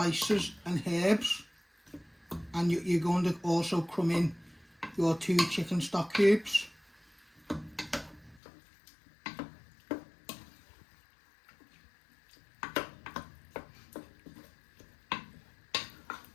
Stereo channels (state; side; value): drops out; right; at 8.4 s